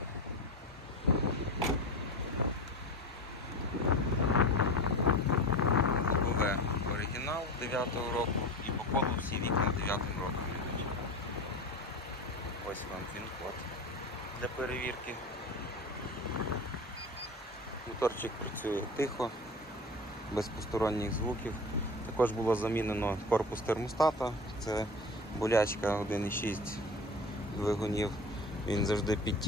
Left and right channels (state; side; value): normal; both; correlation 0.30